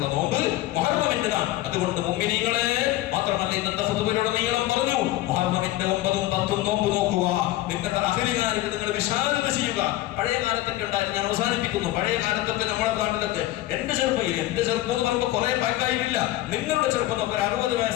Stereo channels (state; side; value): quieter; right; 16.0 dB